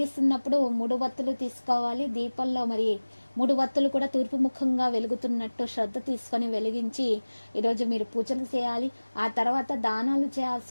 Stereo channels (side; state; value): both; inverted; correlation -1.00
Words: 3 వత్తులు తీసుకోవాలి. దీపంలో మరి 3 వత్తులు కూడా తూర్పు ముఖంగా వెలుగుతున్నట్టు శ్రద్ధ తీసుకొని వెలిగించి ఈరోజు మీరు పూజలు చేయాలి. ఆ తర్వాత దానాలు చేయాల్సి